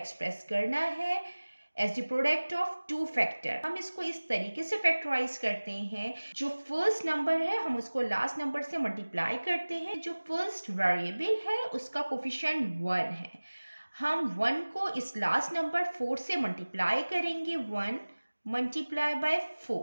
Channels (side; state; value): both; inverted; correlation -1.00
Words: करना है as the product of two factor. हम इसको इस तरीके से फैक्टराइज करते हैं, जो फर्स्ट नंबर है हम उसको लास्ट नंबर से मल्टीप्लाई करते हैं। जो फर्स्ट वेरिएबल है उसका कोफिशिएंट 1 है। हम 1 को इस लास्ट नंबर 4 से मल्टीप्लाई करेंगे। 1 मल्टीप्लाई बाय